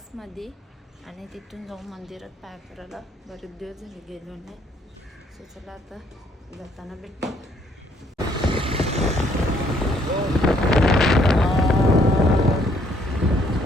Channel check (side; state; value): both; normal; correlation 0.66